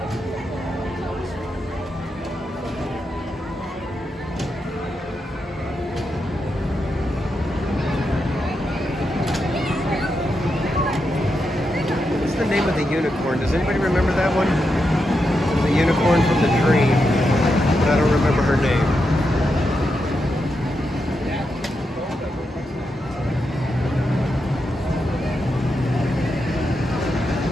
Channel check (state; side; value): normal; both; correlation 0.85